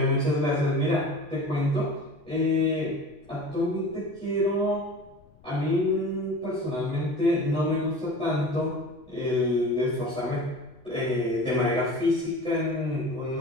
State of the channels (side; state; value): left; noise; rumble, 28 dB below the sound